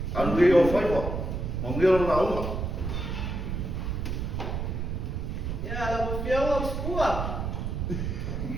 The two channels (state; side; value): noise; right; rumble, 3 dB below the sound